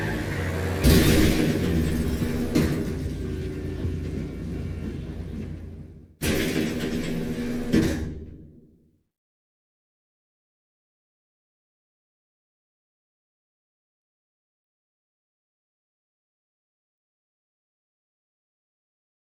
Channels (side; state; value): both; identical; correlation 1.00